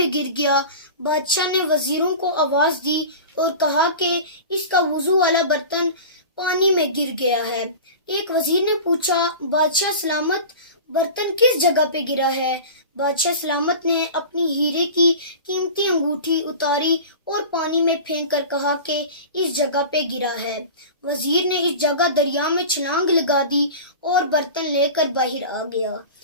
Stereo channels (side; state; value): both; inverted; correlation -0.34